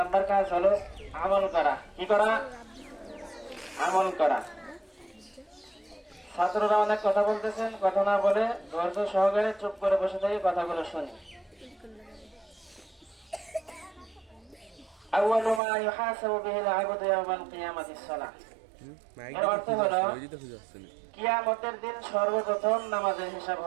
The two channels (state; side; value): drops out; left; at 15.6 s